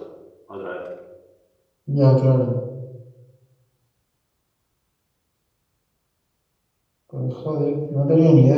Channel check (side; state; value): both; identical; correlation 1.00